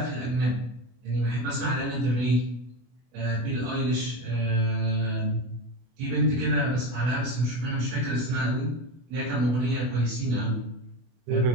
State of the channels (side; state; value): left; late; 24 ms